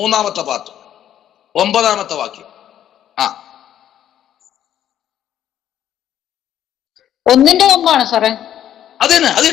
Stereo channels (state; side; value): quieter; right; 10.8 dB